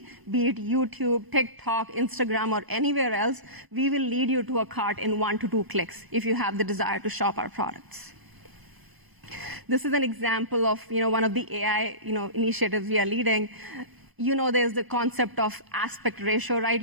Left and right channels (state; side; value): late; left; 1.0 ms